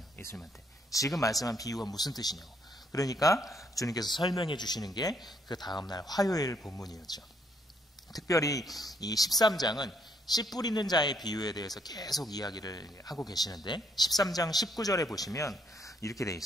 예수님한테. 지금 말씀한 비유가 무슨 뜻이냐고. 그러니까 주님께서 설명해 주시는 게 그 다음날 화요일 본문이었죠. 특별히 이 13장은 씨 뿌리는 자의 비유에 대해서 계속 이야기를 하고 계시는데 13장 19절에 보시면 이렇게 돼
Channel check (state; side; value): normal; both; correlation 0.71